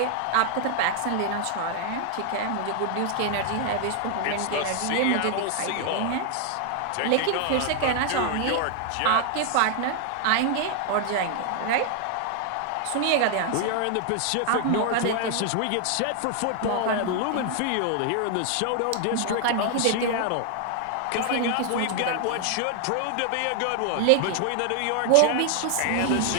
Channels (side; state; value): both; different; correlation 0.00